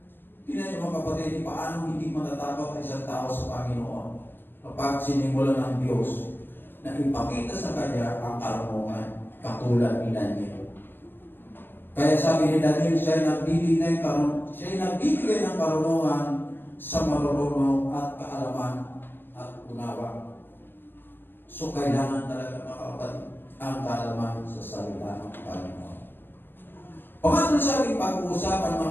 Tingnan niyo, mga kapatid, paano hindi matatakot ang isang tao sa Panginoon kapag sinimulan ng Diyos na ipakita sa kanya ang karunungan katulad ni Daniel. Kaya sabi ni Daniel, siya nagbibigay ng karunungan sa marunong at kaalaman at unawa. So kailangan talaga, mga kapatid, ang kaalaman sa salita ng Panginoon. Pangatlo sa ating pag-uusapan,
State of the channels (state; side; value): late; right; 0.097 ms